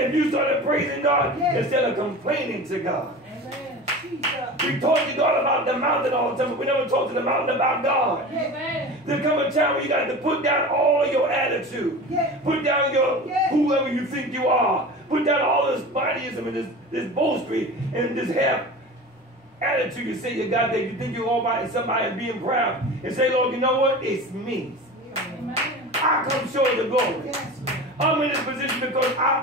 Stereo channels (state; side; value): normal; both; correlation 0.33